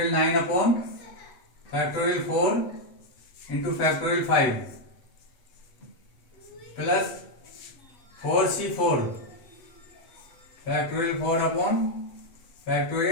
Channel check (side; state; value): right; late; 8.1 ms